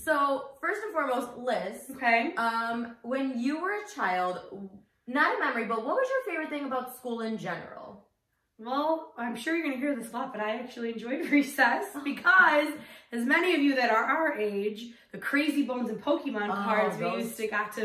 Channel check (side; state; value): both; identical; correlation 1.00